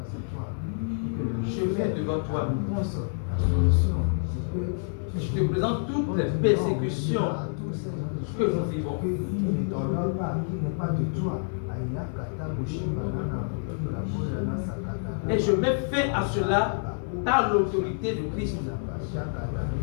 Je viens devant toi. Je te présente toutes les persécutions que nous vivons. Et je mets fin à cela par l'autorité de Christ.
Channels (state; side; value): silent; right; 60 dB below the other